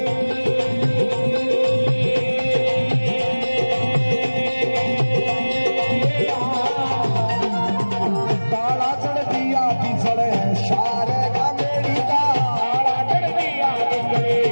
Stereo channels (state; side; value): inverted; both; correlation -1.00